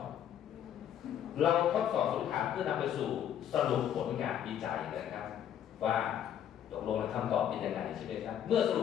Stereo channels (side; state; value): right; quieter; 10.0 dB